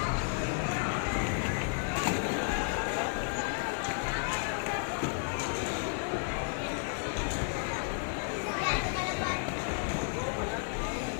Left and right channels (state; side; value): silent; right; 56 dB below the other